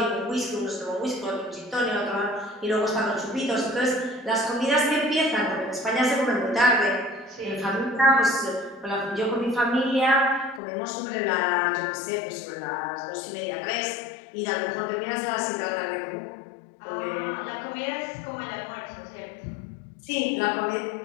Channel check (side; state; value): right; drops out; at 10.6 s